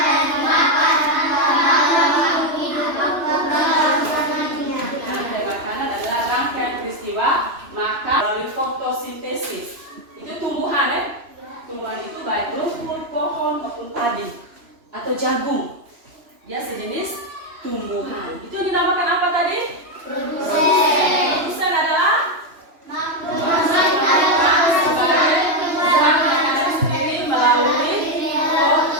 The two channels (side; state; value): left; late; 3.0 ms